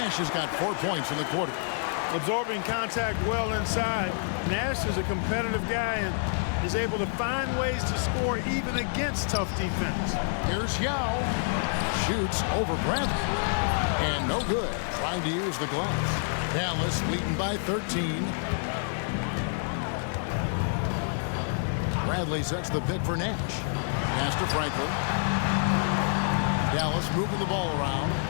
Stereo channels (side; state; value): right; silent; digital silence